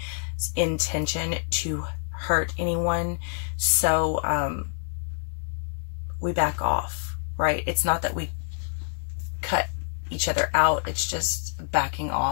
intention to hurt anyone. So, we back off, right? It's not that we cut each other out, it's just backing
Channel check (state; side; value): silent; right; 60 dB below the other